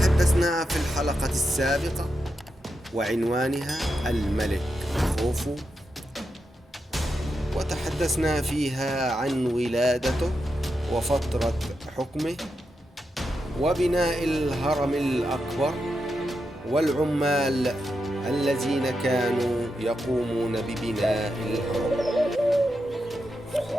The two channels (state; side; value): normal; both; correlation 0.86